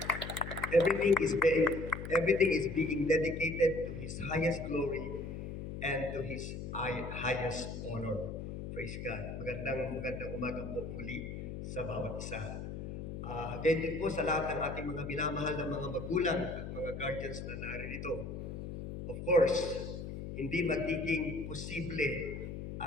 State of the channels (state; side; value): noise; left; hum, 7 dB below the sound